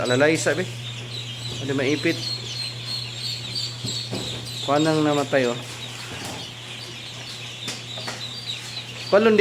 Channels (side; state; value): both; identical; correlation 1.00